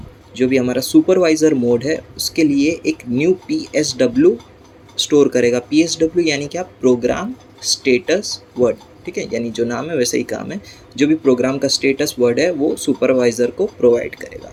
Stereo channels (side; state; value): both; identical; correlation 1.00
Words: जो भी हमारा सुपरवाइज़र मोड है उसके लिए एक न्यू PSW स्टोर करेगा। PSW यानी क्या, प्रोग्राम स्टेटस वर्ड। ठीक है, यानी जो नाम है वैसे ही काम है, जो भी प्रोग्राम का स्टेटस वर्ड है वो सुपरवाइज़र को प्रोवाइड करेगा।